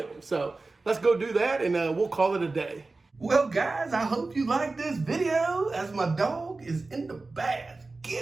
So let's go do that, and we'll call it a day. Well, guys, I hope you like this video, as my dog is in the bath.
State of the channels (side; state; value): left; quieter; 3.5 dB